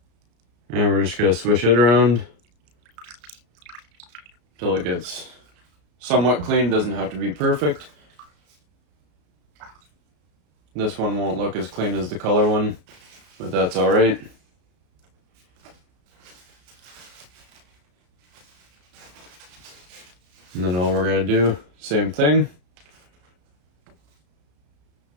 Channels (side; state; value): left; late; 34 ms